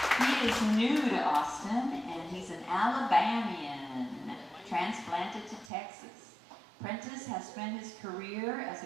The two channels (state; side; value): drops out; left; at 5.7 s